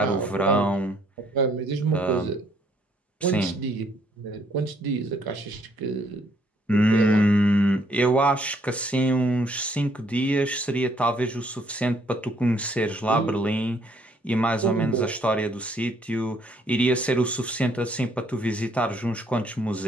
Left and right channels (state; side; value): normal; both; correlation 0.67